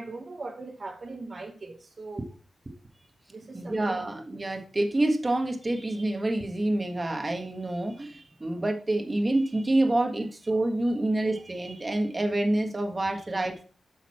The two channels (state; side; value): normal; both; correlation 0.98